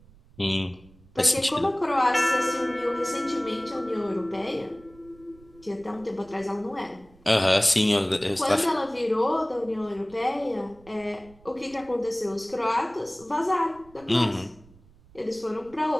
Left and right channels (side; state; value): right; noise; rumble, 26 dB below the sound